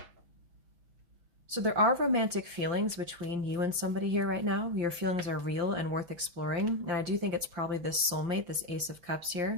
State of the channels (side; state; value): left; late; 5.8 ms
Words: So there are romantic feelings between you and somebody here right now. Your feelings are real and worth exploring. And I do think it's probably this soulmate, this Ace of Cups